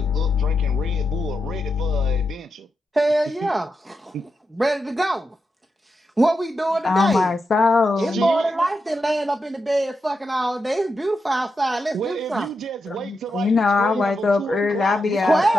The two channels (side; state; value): both; normal; correlation 0.87